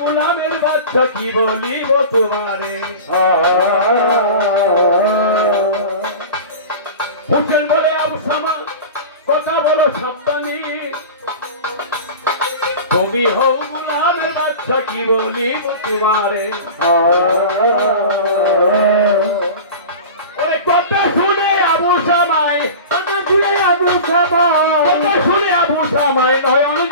বাচ্চা কি বলিব তোমারে হোসেন বলে আবু সামা কথা বলো সাবধানে তুমি হও গোলামের বাচ্চা কি বলিব তোমারে ওরে কথা শুনে আবু সামাই কথা শুনে আবু সামাই নয়ন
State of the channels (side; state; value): both; inverted; correlation -0.34